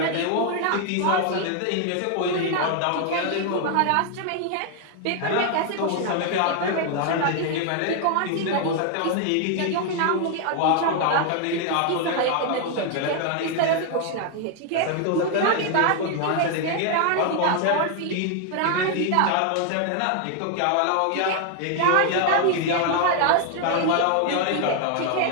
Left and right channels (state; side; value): different; both; correlation 0.00